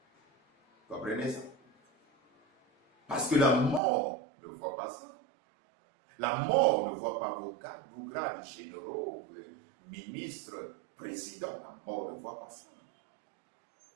Vous comprenez ça? Parce que la mort ne voit pas ça. La mort ne voit pas vos grades généraux, ministres, présidents. La mort ne voit pas ça.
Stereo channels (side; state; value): left; drops out; at 3.8 s